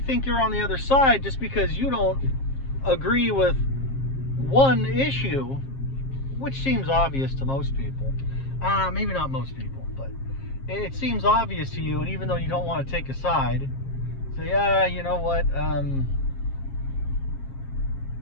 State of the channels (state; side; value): late; right; 7.5 ms